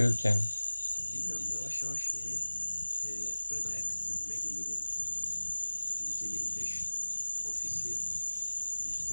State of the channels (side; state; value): both; inverted; correlation -1.00